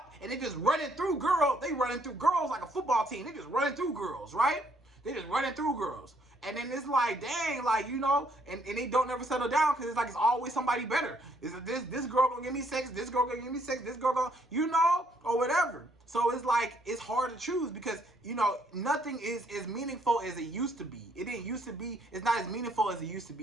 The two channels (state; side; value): normal; both; correlation 0.69